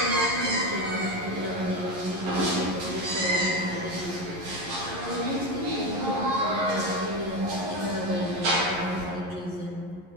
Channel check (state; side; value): late; left; 11 ms